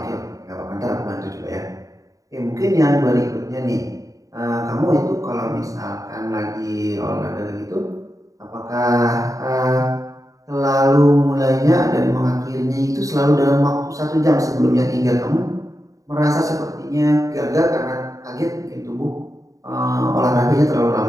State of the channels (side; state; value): left; late; 0.16 ms